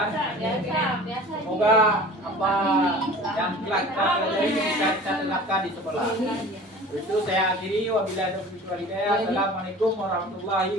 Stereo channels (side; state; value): both; normal; correlation 0.42